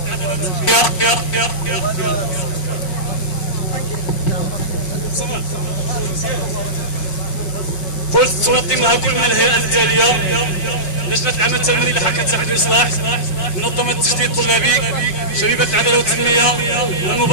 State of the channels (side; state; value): right; late; 5.3 ms